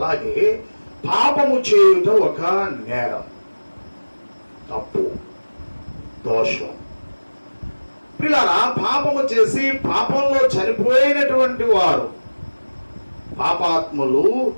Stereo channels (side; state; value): both; inverted; correlation -1.00